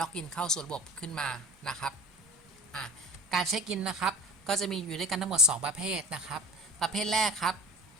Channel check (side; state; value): both; normal; correlation 0.38